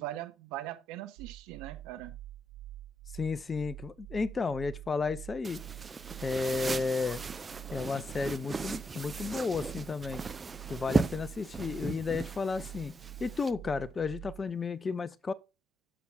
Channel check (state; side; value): normal; both; correlation 0.82